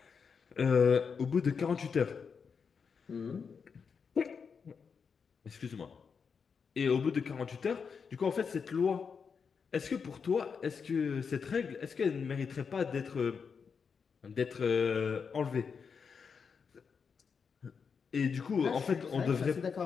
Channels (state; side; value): quieter; right; 5.9 dB